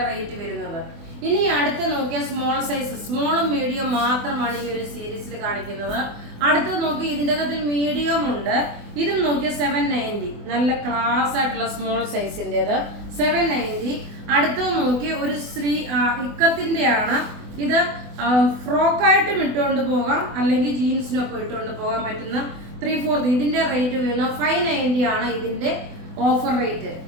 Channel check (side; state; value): left; late; 24 ms